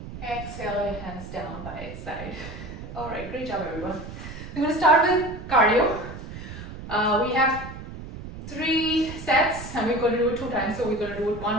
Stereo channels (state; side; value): noise; right; rumble, 11 dB below the sound